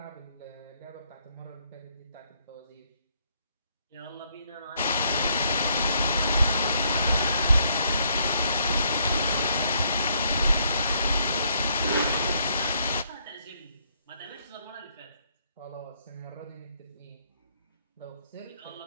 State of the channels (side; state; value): both; inverted; correlation -0.71